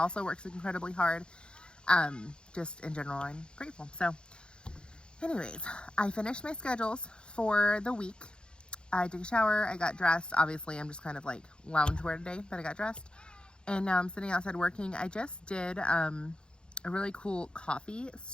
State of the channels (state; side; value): late; right; 0.052 ms